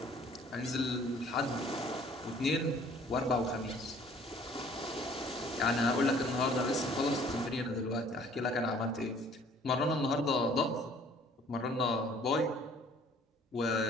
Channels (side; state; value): both; normal; correlation 0.55